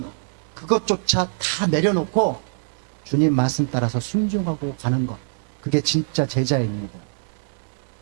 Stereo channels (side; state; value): left; silent; digital silence